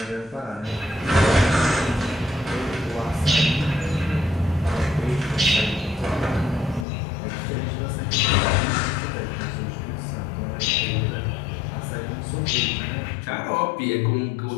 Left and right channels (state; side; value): drops out; right; at 6.9 s